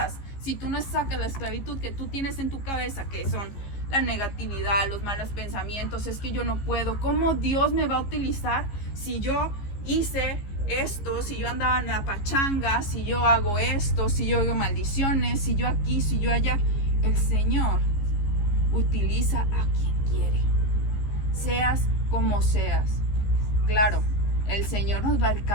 si tú no sacas la esclavitud que tú tienes en tu cabeza, que son la negatividad, los malos pensamientos, es que yo no puedo, ¿cómo Dios me va a utilizar si yo hice esto, si yo andaba en la pachanga, si yo hago esto, si yo hago maldiciones, si yo aquí, si yo allá? El Señor utiliza a quien quiere, seas como seas. Claro, el Señor nos va a ir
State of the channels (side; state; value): right; late; 15 ms